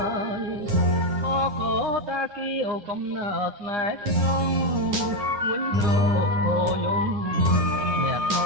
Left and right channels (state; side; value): late; left; 10 ms